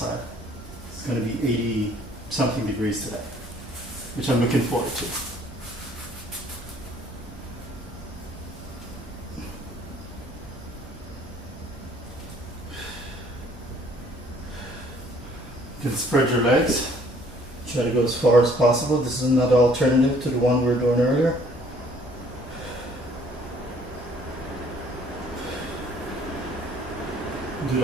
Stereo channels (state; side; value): normal; both; correlation 0.59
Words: It's going to be 80 something degrees today, which I'm looking forward to. You can spread your legs. Try to go as far as possible. This is another alternative to the one we were doing earlier. Do